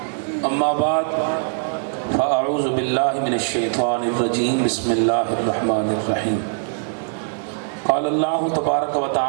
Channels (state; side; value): silent; left; 65 dB below the other